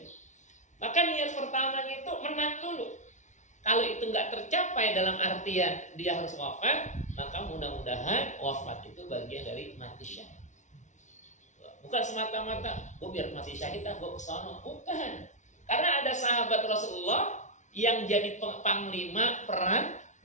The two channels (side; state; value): right; late; 0.35 ms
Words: Maka niat pertamanya itu menang dulu. Kalau itu nggak tercapai dalam artian dia harus wafat, maka mudah-mudahan wafat itu bagian dari mati syahid. Bukan semata-mata gue biar mati syahid gue kesono. Bukan. Karena ada sahabat Rasulullah yang jadi panglima perang,